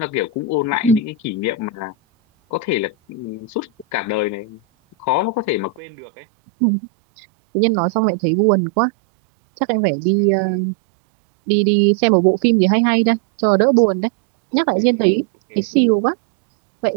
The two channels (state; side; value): drops out; left; at 5.8 s